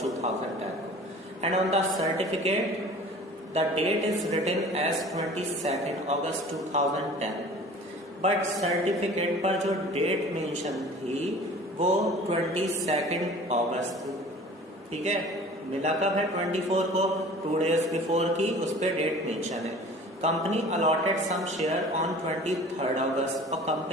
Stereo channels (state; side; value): normal; both; correlation 0.44